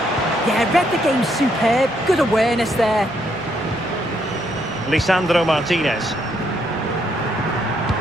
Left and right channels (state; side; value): normal; both; correlation 0.73